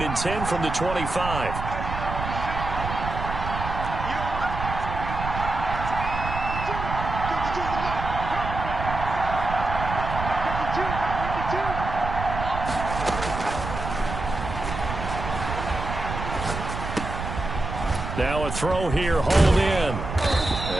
10 from the 25. Now a throw here, hauled in.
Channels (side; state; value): right; noise; rumble, 6 dB below the sound